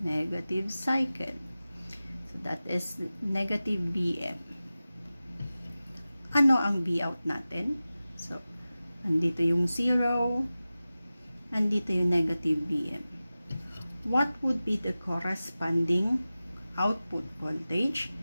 Negative cycle. So, that is negative Vm. Ano ang Vout natin? So, andito yung 0, andito yung negative Vm. What would be the corresponding output voltage?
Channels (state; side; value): inverted; both; correlation -0.96